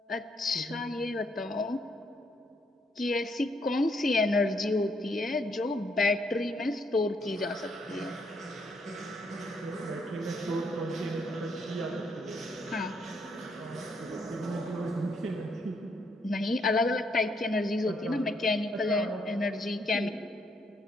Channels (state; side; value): normal; both; correlation 0.73